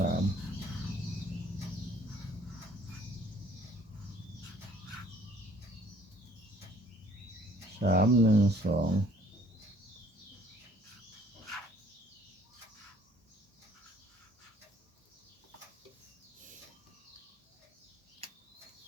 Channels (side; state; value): both; normal; correlation 0.58